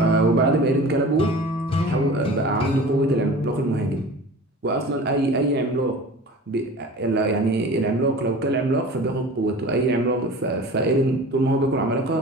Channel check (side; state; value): both; normal; correlation 0.39